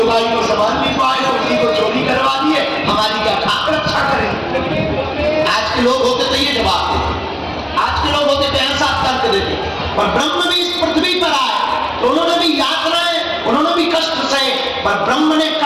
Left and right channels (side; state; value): both; identical; correlation 1.00